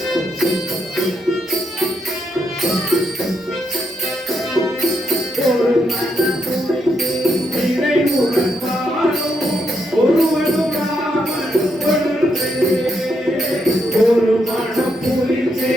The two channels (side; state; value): both; normal; correlation 0.79